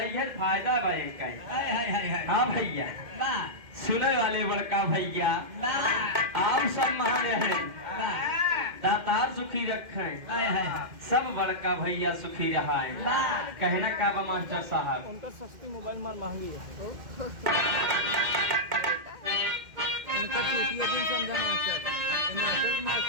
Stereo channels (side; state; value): left; late; 2.1 ms